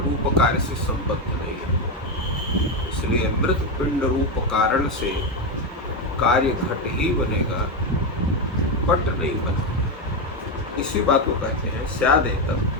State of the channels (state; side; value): normal; both; correlation 0.09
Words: कार्य से संबद्ध नहीं है। इसलिए मृत पिंड रूप कारण से कार्य घट ही बनेगा, पट नहीं बनेगा। इसी बात को कहते हैं